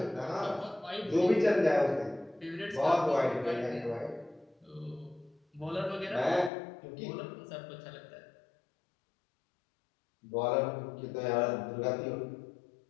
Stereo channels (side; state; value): right; drops out; at 6.5 s